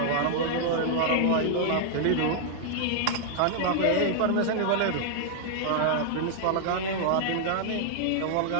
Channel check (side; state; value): both; different; correlation -0.01